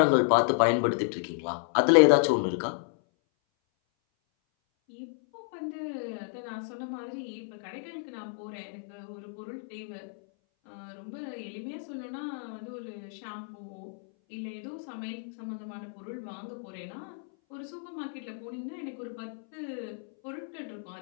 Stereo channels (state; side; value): silent; right; 57 dB below the other